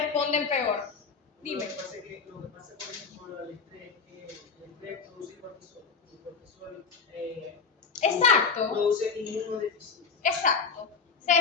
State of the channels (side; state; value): right; quieter; 5.3 dB